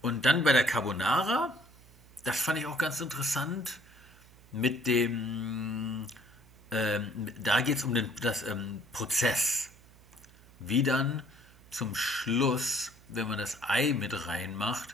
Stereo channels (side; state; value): right; noise; hum, 25 dB below the sound